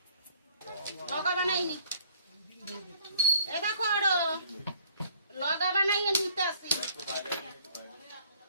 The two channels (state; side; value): inverted; both; correlation -0.58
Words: লগা বানাইনি, এ দেখো আরো লগা বানাইয়ে নিতে আসি।